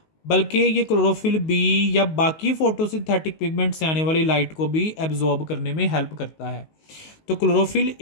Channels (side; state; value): right; late; 19 ms